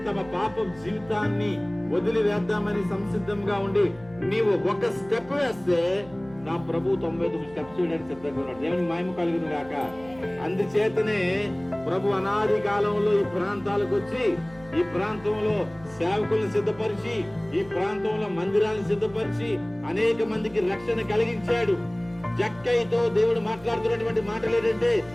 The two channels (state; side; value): noise; right; hum, 22 dB below the sound